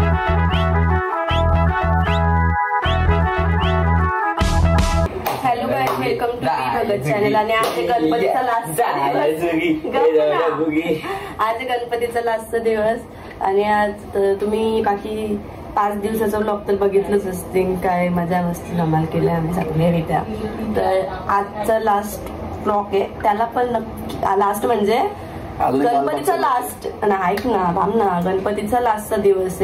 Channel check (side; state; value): both; identical; correlation 1.00